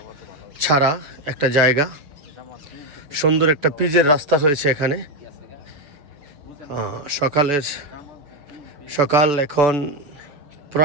ছাড়া একটা জায়গা। সুন্দর একটা পিচের রাস্তা হয়েছে এখানে। সকাল এখন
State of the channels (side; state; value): left; late; 6.9 ms